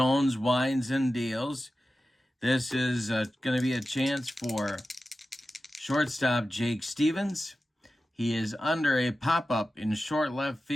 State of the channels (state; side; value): normal; both; correlation 0.93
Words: winds and deals. This is going to be a chance for shortstop Jake Stevens. He is under a pop-up in short left